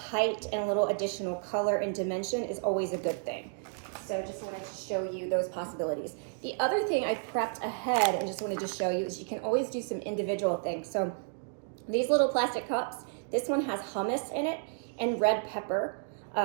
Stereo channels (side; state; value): left; silent; digital silence